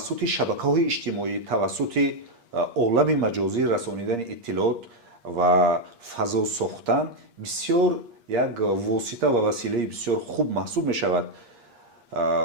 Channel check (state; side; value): late; left; 8.5 ms